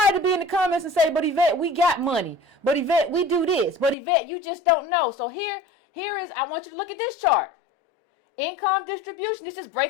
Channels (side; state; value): right; drops out; at 4.0 s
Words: to be in the comments and say, but Yvette, we got money, but Yvette, we do this, but Yvette, you just don't know. So here is, I want you to look at this chart. Income distribution. This just